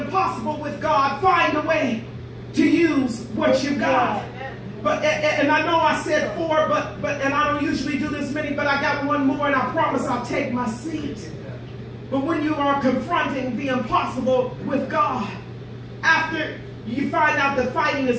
impossible with God, find a way to use what you've got. But and I know I said 4, but and I don't usually do this many, but I got one more, and I promise I'll take my seat. But when you are confronting the impossible with God, after you find out that fighting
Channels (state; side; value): identical; both; correlation 1.00